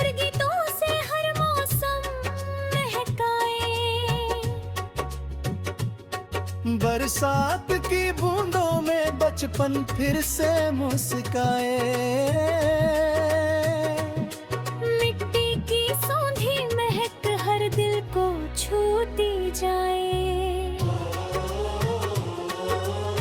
गीतों से हर मौसम महकाए। बरसात की बूंदों में बचपन फिर से मुस्काए। मिट्टी की सौंधी महक हर दिल को छूती जाए।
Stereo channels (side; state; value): both; identical; correlation 1.00